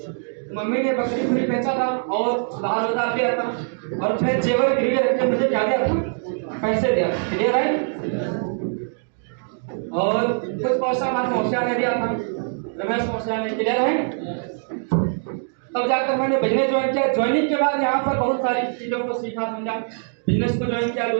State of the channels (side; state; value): left; silent; 64 dB below the other